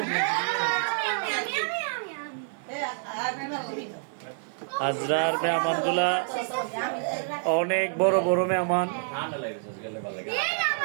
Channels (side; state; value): left; silent; 60 dB below the other